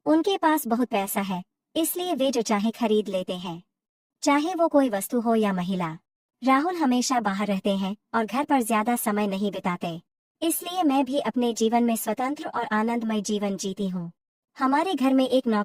उनके पास बहुत पैसा है, इसलिए वे जो चाहे खरीद लेते हैं, चाहे वो कोई वस्तु हो या महिला। राहुल हमेशा बाहर रहते हैं और घर पर ज्यादा समय नहीं बिताते, इसलिए मैं भी अपने जीवन में स्वतंत्र और आनंदमय जीवन जीती हूँ। हमारे घर में एक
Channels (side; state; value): both; identical; correlation 1.00